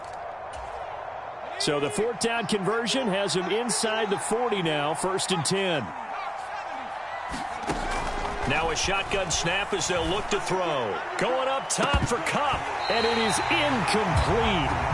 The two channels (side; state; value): both; identical; correlation 1.00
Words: So the 4th down conversion has him inside the 40 now, 1st and 10. Now a shotgun snap as they'll look to throw. Going up top for Kupp. And it is incomplete.